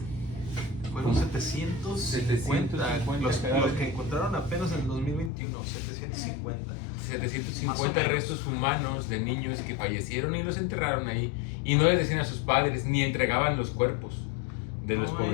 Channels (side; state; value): right; drops out; at 5.3 s